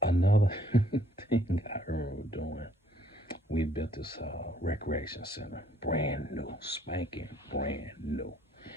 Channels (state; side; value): normal; both; correlation 0.63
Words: another thing I remember doing, we built this recreation center, brand new, spanking, brand new.